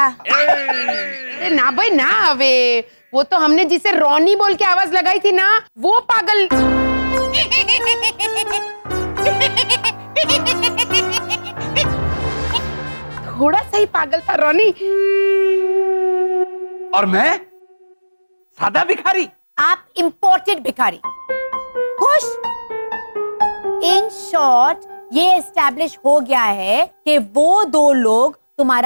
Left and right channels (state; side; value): inverted; both; correlation -1.00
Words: अरे ना भाई ना, अबे वो तो हमने जिसे रॉनी बोल के आवाज लगाई थी ना, वो पागल। थोड़ा सा ही पागल था रॉनी। और मैं सादा भिखारी? आप इंपोर्टेड भिखारी। खुश? इन शॉर्ट ये एस्टैब्लिश हो गया है कि वो दो लोग